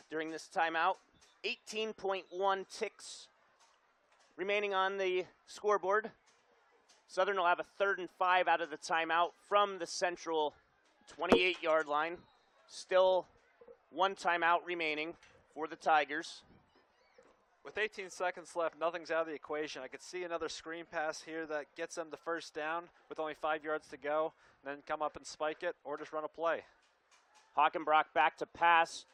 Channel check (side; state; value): both; identical; correlation 1.00